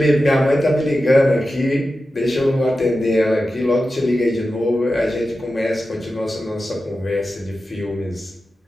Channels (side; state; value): both; normal; correlation 0.92